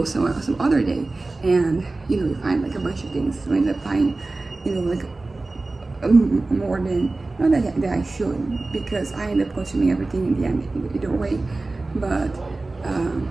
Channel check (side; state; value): left; quieter; 3.3 dB